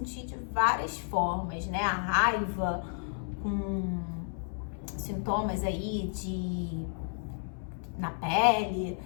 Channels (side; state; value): right; silent; 57 dB below the other